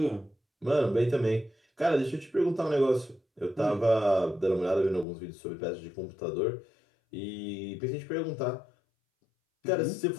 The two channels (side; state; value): right; drops out; at 5.1 s